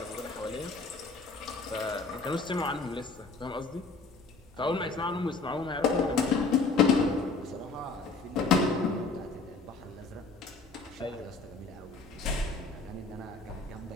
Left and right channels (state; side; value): quieter; right; 4.0 dB